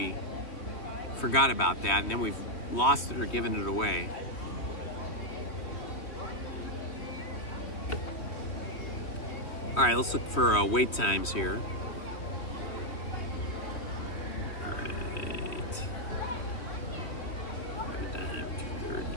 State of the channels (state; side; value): late; right; 3.1 ms